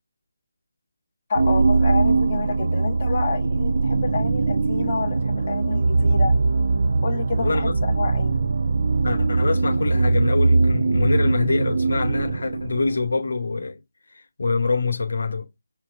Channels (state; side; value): inverted; both; correlation -0.92